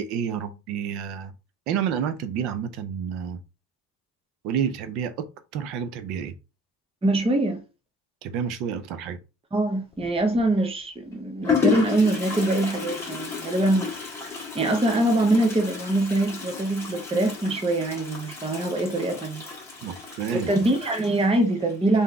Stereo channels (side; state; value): both; normal; correlation 0.61